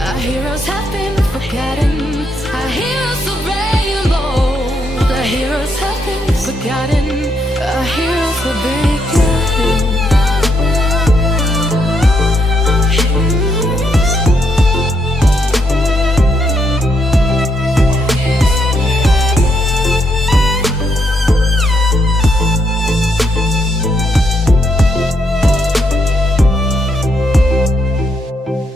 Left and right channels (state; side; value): normal; both; correlation 0.77